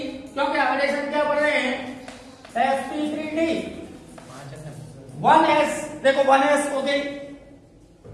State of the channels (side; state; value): both; identical; correlation 1.00